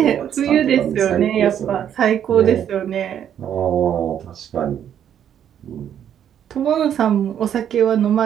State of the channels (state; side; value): quieter; left; 9.5 dB